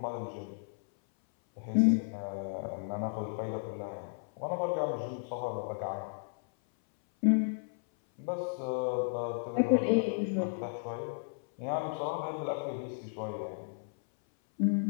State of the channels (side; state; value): right; silent; 55 dB below the other